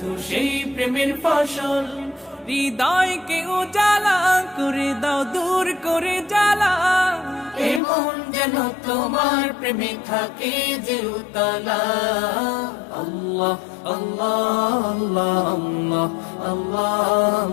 সেই প্রেমের ফসল। হৃদয়কে উজালা করে দাও, দূর করে জ্বালা, এমন যেন তোমার প্রেমে থাকে যে উতলা। আল্লাহ আল্লাহ আল্লাহ আল্লাহ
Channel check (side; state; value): right; drops out; at 7.8 s